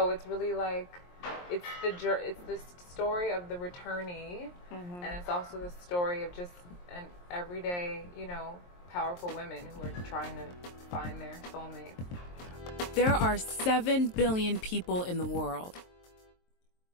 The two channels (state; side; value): late; right; 23 ms